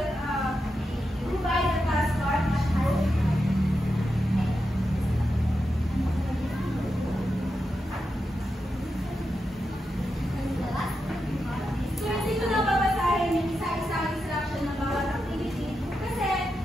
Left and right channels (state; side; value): normal; both; correlation 0.88